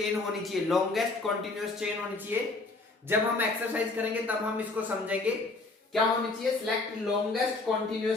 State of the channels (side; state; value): right; quieter; 3.4 dB